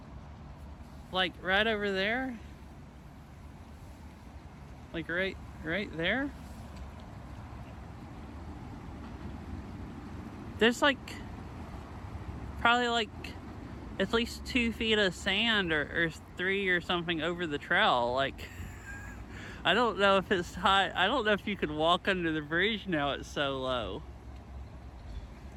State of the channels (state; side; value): identical; both; correlation 1.00